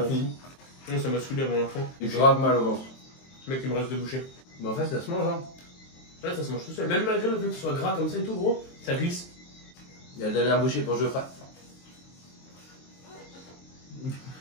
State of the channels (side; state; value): right; late; 23 ms